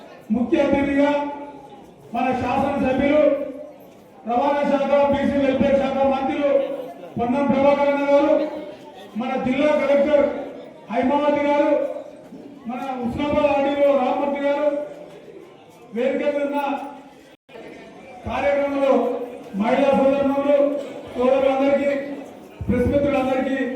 ముఖ్య అతిథిగా మన శాసనసభ్యులు, రవాణా శాఖ, బీసీ వెల్ఫేర్ శాఖ మంత్రులు పొన్నం ప్రభాకర్ గారు, మన జిల్లా కలెక్టర్ హైమావతి గారు, మన హుస్నాబాద్ ఆర్డీఓ రామ్మూర్తి గారు, వేదిక మీద ఉన్న కార్యక్రమంలో మహిళా సోదరులు సోదరులందరికీ, ప్రెస్ మిత్రులందరికీ,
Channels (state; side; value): identical; both; correlation 1.00